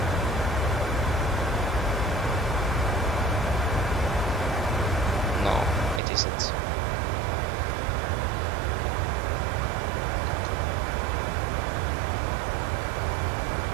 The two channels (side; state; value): left; drops out; at 6.0 s